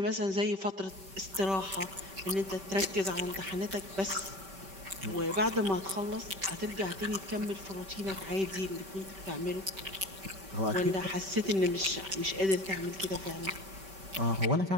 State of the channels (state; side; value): late; left; 5.2 ms